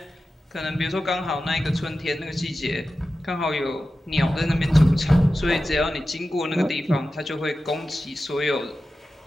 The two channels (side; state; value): both; normal; correlation 0.93